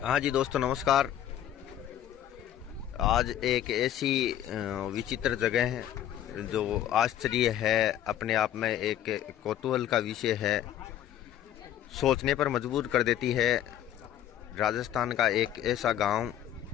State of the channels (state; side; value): quieter; right; 11.3 dB